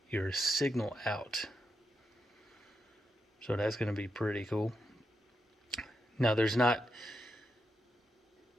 your signal out, so that's going to be pretty cool. Now there's not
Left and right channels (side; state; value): both; normal; correlation 0.85